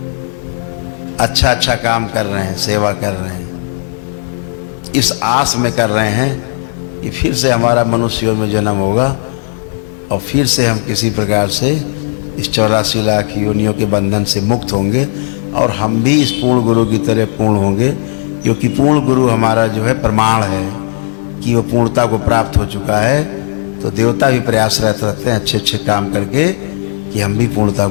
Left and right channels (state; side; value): silent; right; digital silence